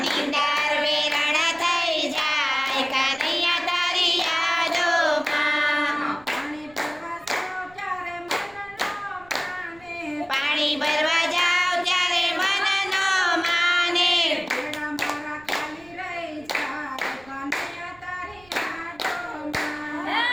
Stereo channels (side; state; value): right; noise; rumble, 26 dB below the sound